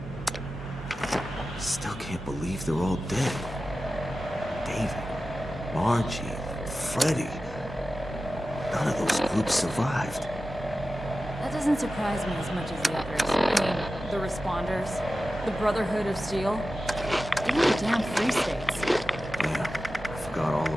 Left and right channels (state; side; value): normal; both; correlation 0.94